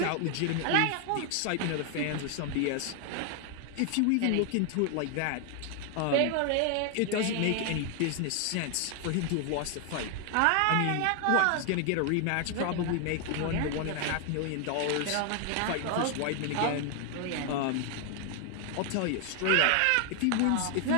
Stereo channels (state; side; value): different; both; correlation 0.00